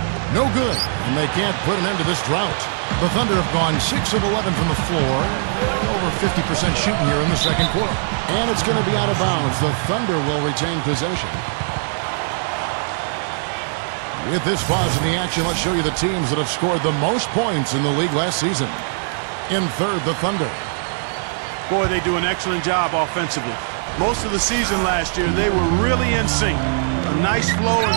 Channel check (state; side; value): silent; left; 63 dB below the other